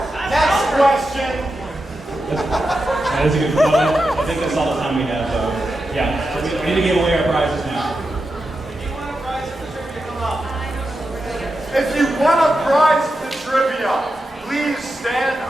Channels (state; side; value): normal; both; correlation 0.89